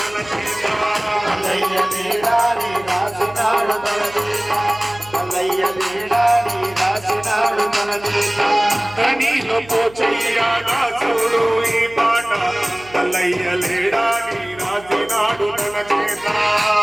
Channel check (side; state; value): right; noise; hum, 22 dB below the sound